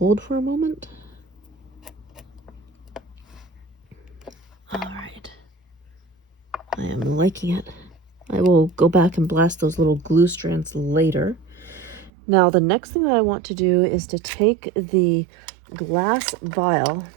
for a moment. All right. I am liking it. I will go back and blast those little glue strands later. Now, the next thing that I want to do is to take the glass vial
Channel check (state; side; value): drops out; left; at 12.1 s